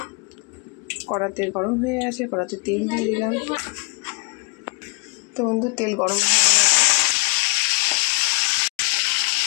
কড়াতে গরম হয়ে গেছে, কড়াতে তেল দিয়ে দিলাম। তো বন্ধু, তেল গরম হয়ে গেছে।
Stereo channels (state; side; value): quieter; right; 31.4 dB